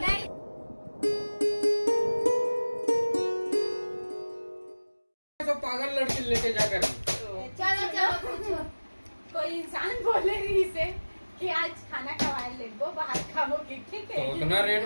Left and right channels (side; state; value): both; inverted; correlation -1.00